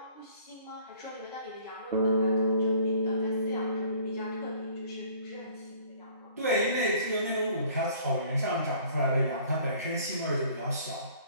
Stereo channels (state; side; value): inverted; both; correlation -0.54